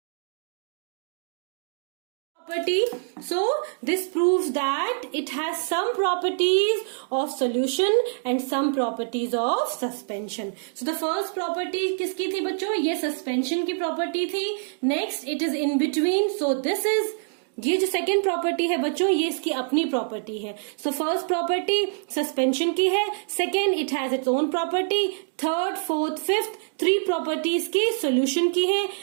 So this proves that it has some properties of solution and some properties of suspension. So the first property किसकी थी बच्चों? ये suspension की property थी. Next, it is in between. So this is ये जो second property है बच्चों ये इसकी अपनी प्रॉपर्टी है. सो फर्स्ट प्रॉपर्टी सस्पेंशन की है, second it has its own property, third fourth fifth three properties की सोल्यूशन की है,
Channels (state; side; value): silent; left; 61 dB below the other